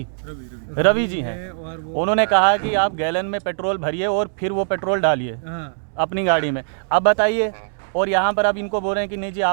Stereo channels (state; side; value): silent; left; digital silence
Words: रवि जी हैं। उन्होंने कहा कि आप गैलन में पेट्रोल भरिए और फिर वो पेट्रोल डालिए अपनी गाड़ी में। अब बताइए, और यहाँ पर अब इनको बोल रहे हैं कि नहीं जी